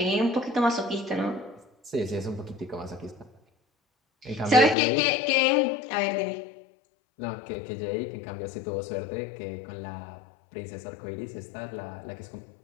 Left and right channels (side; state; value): right; drops out; at 4.8 s